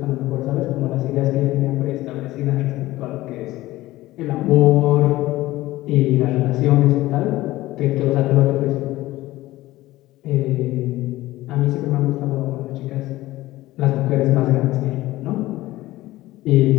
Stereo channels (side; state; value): right; quieter; 17.2 dB